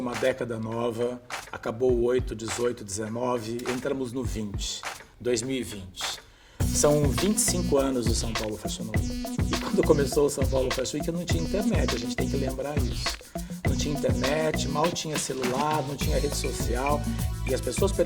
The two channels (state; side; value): identical; both; correlation 1.00